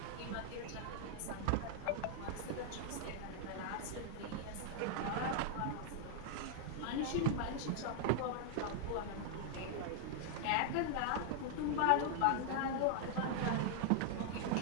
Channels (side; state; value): both; different; correlation 0.00